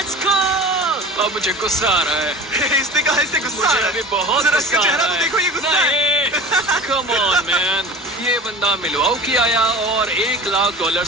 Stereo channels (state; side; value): normal; both; correlation 0.37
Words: go. अब मुझे गुस्सा आ रहा है। इसने कहा इससे गुस्सा आ मुझे रहा अभी है। बहुत जरा गुस्सा इसका आ चेहरा रहा तो है। देखो, ये गुस्सा है। कम ऑन मैन, ये बंदा मिलवाउकी आया और $1 लाख